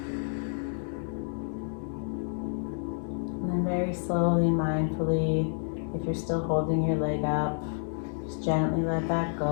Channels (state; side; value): silent; right; digital silence